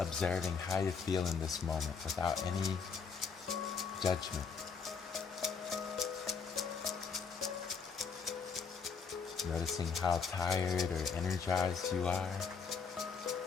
how you feel in this moment without any judgment. Noticing how tired or energized you are,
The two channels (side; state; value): right; quieter; 5.6 dB